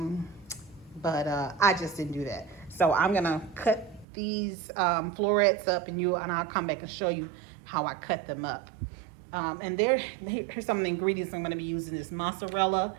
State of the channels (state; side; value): drops out; left; at 4.0 s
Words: but I just didn't do that. So I'm gonna cut these florets up, and I'll come back and show you how I cut them up. And here's some of the ingredients I'm gonna be using: is mozzarella